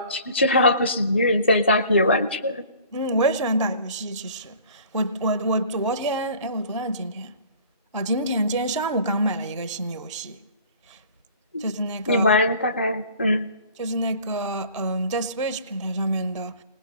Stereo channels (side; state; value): both; inverted; correlation -0.49